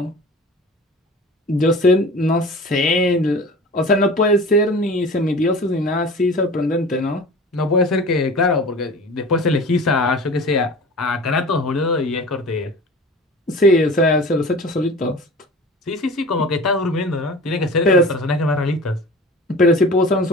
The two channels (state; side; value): normal; both; correlation 0.39